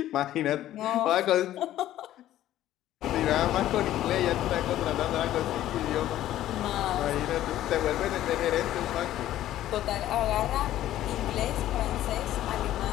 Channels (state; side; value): quieter; right; 13.3 dB